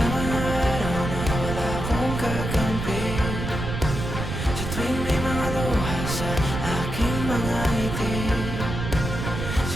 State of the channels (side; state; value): right; noise; rumble, 4 dB below the sound